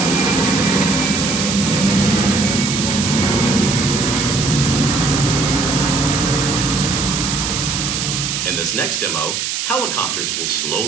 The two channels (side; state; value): right; noise; hiss, 2 dB below the sound